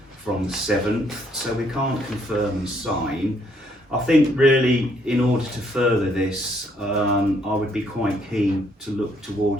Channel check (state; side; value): normal; both; correlation 0.69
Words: from the 7th, so we can't confirm and sign. I think really in order to further this, I would be quite keen to look